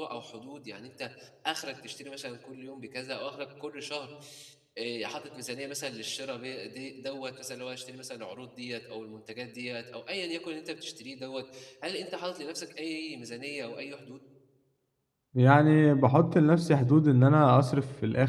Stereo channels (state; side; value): identical; both; correlation 1.00